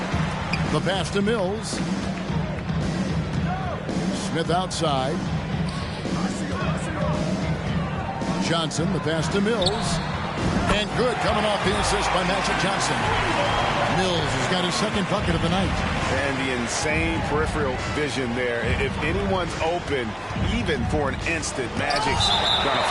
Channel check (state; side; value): identical; both; correlation 1.00